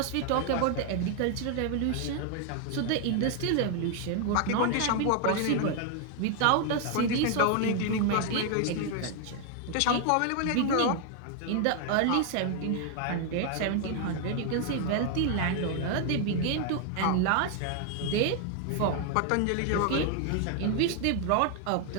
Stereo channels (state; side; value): different; both; correlation 0.00